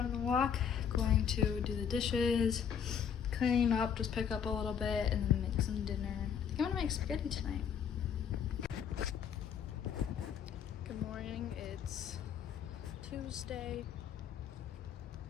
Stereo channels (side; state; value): right; quieter; 7.8 dB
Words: the walk, going to do the dishes, cleaning up, just pick up a little bit, and then make some dinner. I think I'm gonna make spaghetti tonight. Good morning, it's Tuesday.